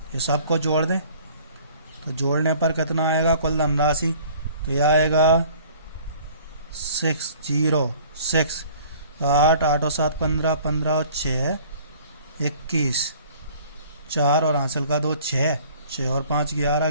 ये सबको जोड़ दें तो जोड़ने पर कितना आएगा कुल धनराशि? तो यह आएगा 606। 8 8 और 7 15, 15 और 6 21, 4 और हासिल का 2 6, 6 और 5 11,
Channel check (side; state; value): both; inverted; correlation -0.51